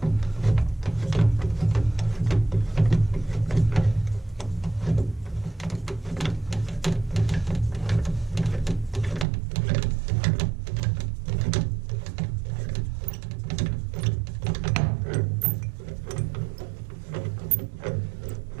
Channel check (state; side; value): drops out; left; at 9.2 s